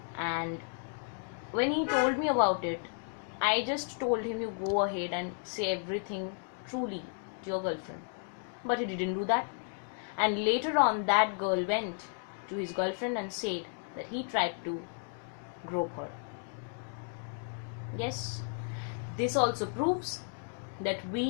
and when he told me about it, I just told him, you go ahead and say everything truly to your girlfriend. But he didn't do that. And later on, that girl went to his girlfriend and said that he tried to grope her. Yes, this also proves that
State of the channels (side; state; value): right; silent; 55 dB below the other